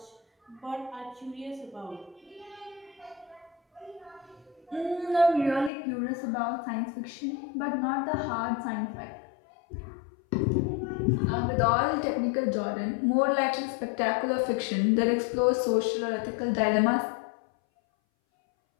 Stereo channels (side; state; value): right; drops out; at 5.7 s